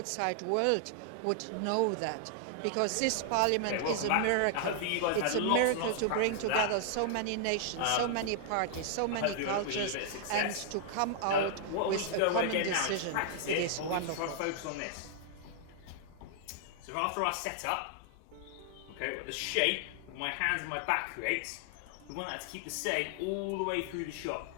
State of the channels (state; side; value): different; both; correlation 0.00